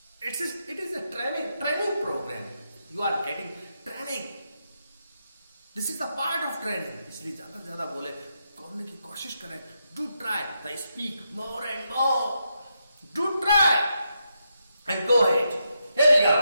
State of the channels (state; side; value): inverted; both; correlation -0.83